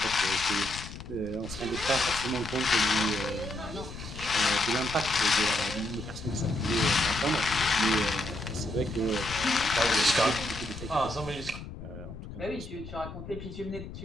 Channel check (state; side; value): noise; left; rumble, 11 dB below the sound